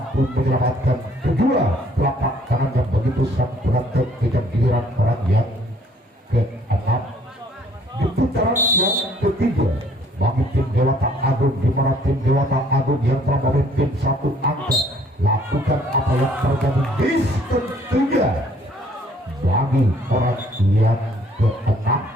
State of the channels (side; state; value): both; normal; correlation 0.61